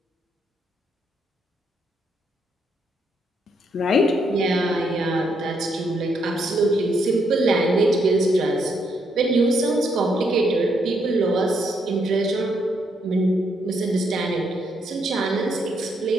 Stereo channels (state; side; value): normal; both; correlation 0.75